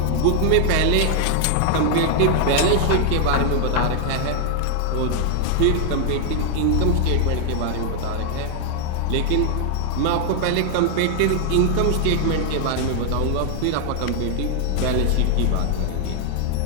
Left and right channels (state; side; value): different; both; correlation 0.00